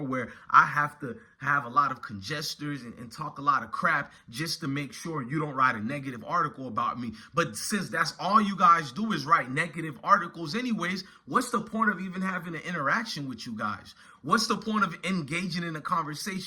where I have to have a lot of congestors and talk a lot of crap just to make sure you don't write a negative article about me. But since that's all you guys do is write negative articles anyways, what's the point of even having an interaction with you guys? What's the point of engaging in a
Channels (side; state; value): both; identical; correlation 1.00